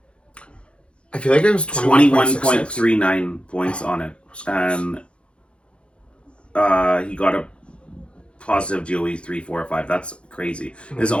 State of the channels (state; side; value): late; right; 0.058 ms